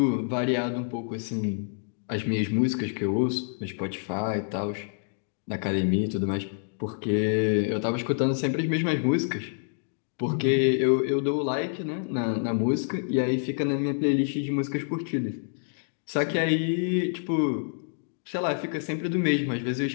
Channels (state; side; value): silent; right; digital silence